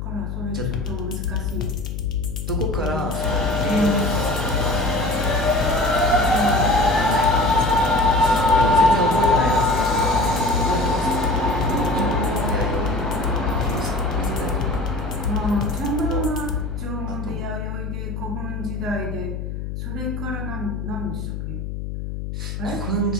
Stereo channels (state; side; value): noise; left; hum, 6 dB below the sound